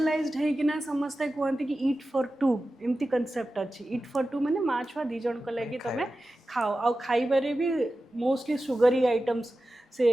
है कि ना समझते कहते कि ईट फॉर टू एमती कंसेप्ट अच्छी ईट फॉर टू माने माँ छुआ दी जन को लगे तुम खाओ आ खाइबारे भी मोस्टली सुगरी आइटम्स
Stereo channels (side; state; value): both; normal; correlation 0.94